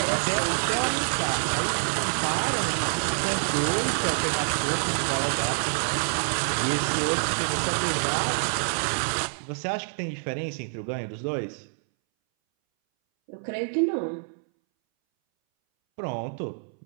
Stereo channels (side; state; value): left; silent; 60 dB below the other